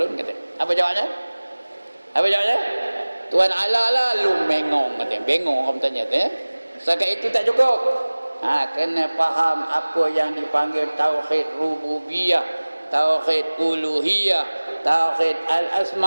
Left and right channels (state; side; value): inverted; both; correlation -1.00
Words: kata. Apa jawabnya? Apa jawabnya? Tuhan Allah lah, lu bengong, katanya. Bengong orang tanya tu, Setakat itu tak cukup. Kena faham apa yang dipanggil tauhid rububiyah, tauhid uluhiyah, tauhid